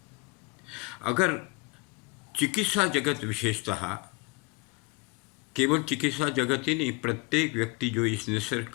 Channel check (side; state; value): right; quieter; 26.5 dB